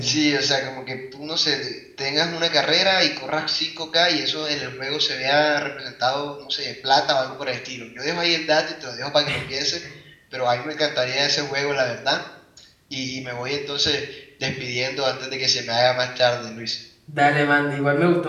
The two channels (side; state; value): both; identical; correlation 1.00